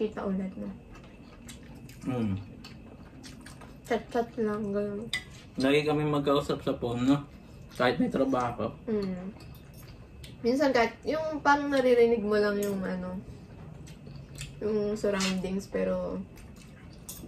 ulit na. Chat-chat lang, gano'n. Lagi kami magkausap sa phone, no? Kahit may trabaho. Minsan kahit, yung parang naririnig mo lang yung yung surroundings, pero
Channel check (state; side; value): identical; both; correlation 1.00